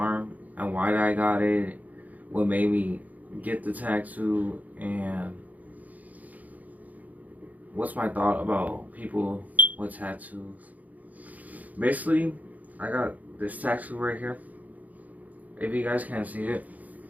and why I got it, what made me get the tattoo, and what's my thought about people with tattoos. Basically, I got this tattoo right here. If you guys can't see it,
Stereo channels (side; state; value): left; late; 0.078 ms